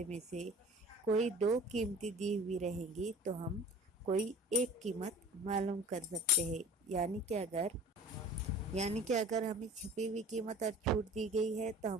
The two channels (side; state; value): both; normal; correlation 0.43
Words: میں سے کوئی دو قیمتیں دی ہوئی رہیں گی تو ہم کوئی ایک قیمت معلوم کر سکتے ہیں، یعنی کہ اگر ہمیں چھپی ہوئی قیمت اور چھوٹ دی گئی ہے تو